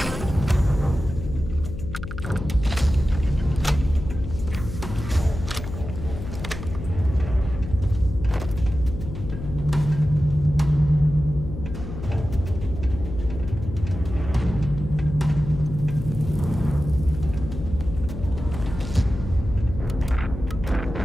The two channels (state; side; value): noise; left; hum, 8 dB below the sound